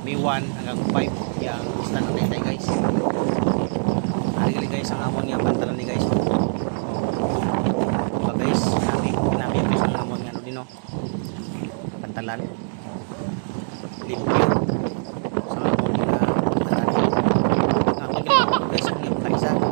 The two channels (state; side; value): silent; left; digital silence